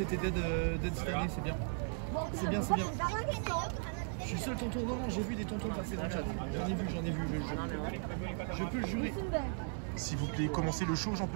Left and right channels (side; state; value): left; silent; 53 dB below the other